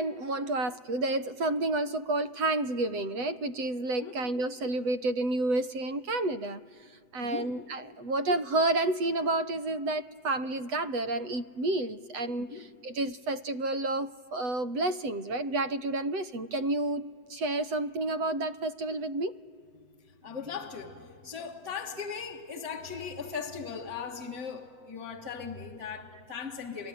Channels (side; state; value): left; late; 7.9 ms